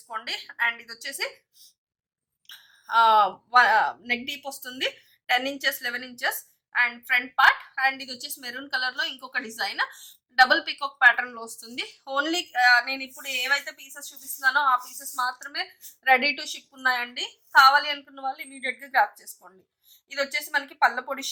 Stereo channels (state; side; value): identical; both; correlation 1.00